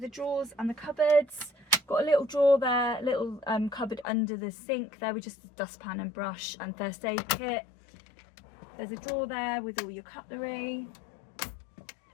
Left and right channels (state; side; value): drops out; right; at 4.0 s